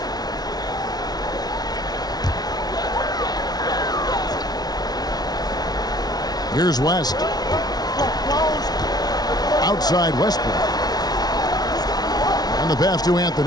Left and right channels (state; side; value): late; right; 0.19 ms